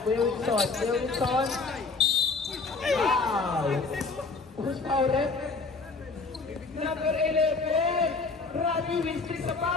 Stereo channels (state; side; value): quieter; right; 4.1 dB